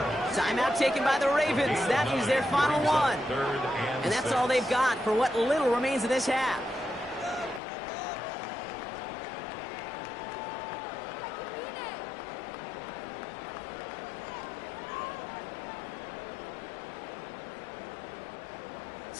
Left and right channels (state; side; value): drops out; right; at 7.6 s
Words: Timeout taken by the Ravens. That is their final one. And that's all they've got for what little remains of this half.